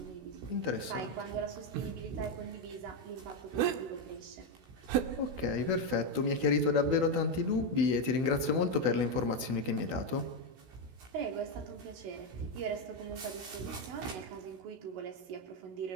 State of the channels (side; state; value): left; late; 16 ms